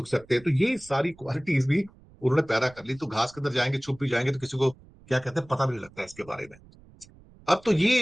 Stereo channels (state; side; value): noise; right; rumble, 25 dB below the sound